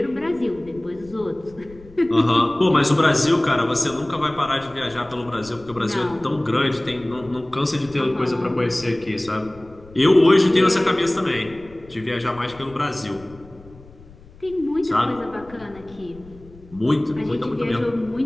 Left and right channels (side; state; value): left; noise; rumble, 22 dB below the sound